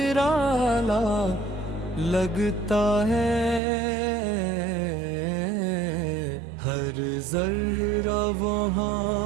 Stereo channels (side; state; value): left; drops out; at 3.6 s